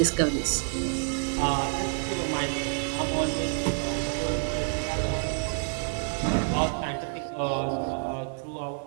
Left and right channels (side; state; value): left; silent; 59 dB below the other